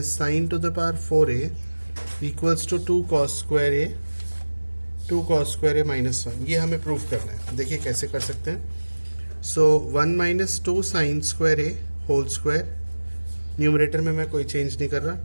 sine to the power 4a equals to 2 cos square a 2 cos square a minus 1. ये हमें prove करना है. देखिए कैसे कर सकते हैं. So 1 minus 2 sin square a whole square, numerator में मैं कोई चेंज नहीं कर रहा,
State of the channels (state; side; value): inverted; both; correlation -1.00